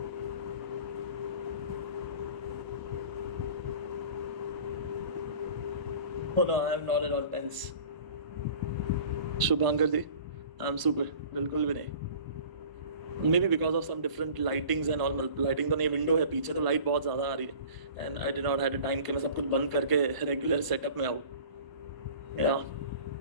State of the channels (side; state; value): left; late; 1.0 ms